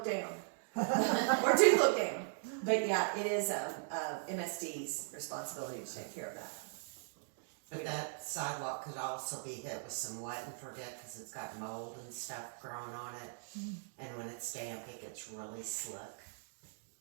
down. Or do look down. But yeah, it is, MSD's responsibility to take care of that. But that sidewalk could also be hit with some wet and forget, cause it's got mold and stuff growing on it. And when it's damp, it gets really slick.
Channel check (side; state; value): left; silent; digital silence